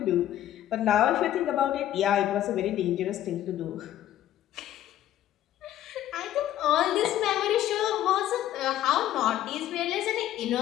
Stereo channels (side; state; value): right; quieter; 12.4 dB